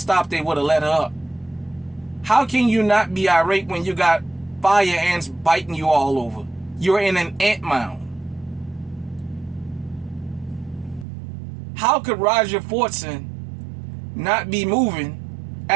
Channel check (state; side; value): drops out; left; at 11.1 s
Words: they would have let her up. How can you not be irate when you got fire ants biting you all over? You're in an ant mound. How could Roger Fortson not be moving